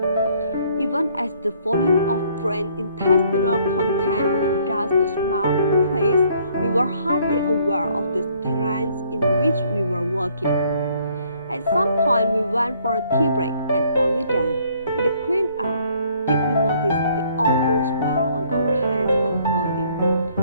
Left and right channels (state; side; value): inverted; both; correlation -0.63